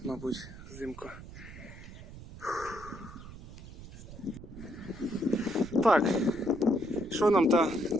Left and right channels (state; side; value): noise; right; rumble, 15 dB below the sound